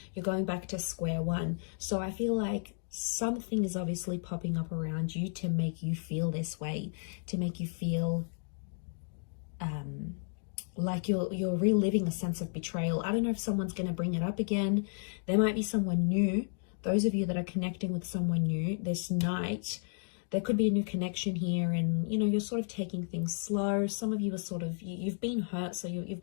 you're going back to square one. So I feel like something is obviously popping up around you to make you feel this way, to make you feel like you're reliving a sense of betrayal. I don't know if someone's going to bring it up again. There might be someone new. Those of you that are connecting with someone new this night, there could be a new connection here and, you know, you're sort of taking things slow. Some of you are sort of, you've been hurt, so you've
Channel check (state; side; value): silent; right; 56 dB below the other